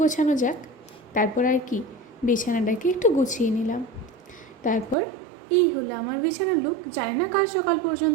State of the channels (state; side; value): drops out; left; at 5.0 s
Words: গোছানো যাক। তারপর আর কি, বিছানাটাকে একটু গুছিয়ে নিলাম। তারপর এই হলো আমার বিছানার লুক। জানি না কাল সকাল